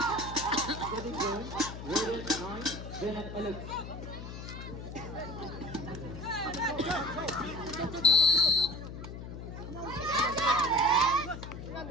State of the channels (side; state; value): left; noise; hum, 10 dB below the sound